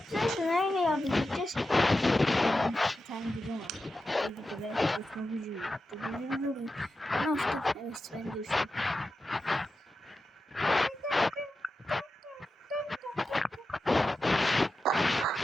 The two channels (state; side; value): normal; both; correlation 0.91